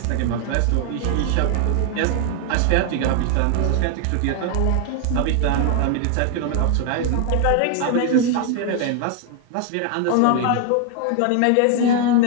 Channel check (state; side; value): different; both; correlation 0.00